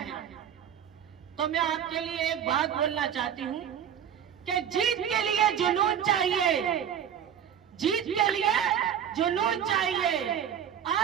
तो मैं आपके लिए एक बात बोलना चाहती हूँ कि जीत के लिए जुनून चाहिए, जीत के लिए जुनून चाहिए,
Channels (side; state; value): left; quieter; 9.0 dB